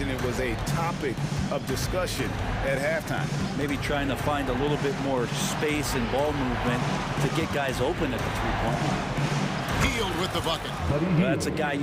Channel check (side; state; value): both; identical; correlation 1.00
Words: it was a topic of discussion at halftime. Maybe trying to find a little bit more space and ball movement to get guys open at the three-point line. Hield with the bucket. Well, that's a guy